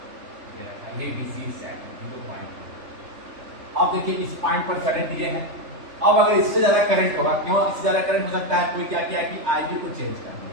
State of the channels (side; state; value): left; late; 3.3 ms